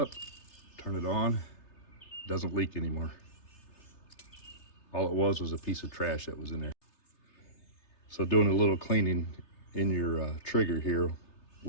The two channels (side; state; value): right; late; 3.3 ms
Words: turn it on, doesn't leak anymore. All it was a piece of trash that was in there. So doing a little cleaning in your trigger here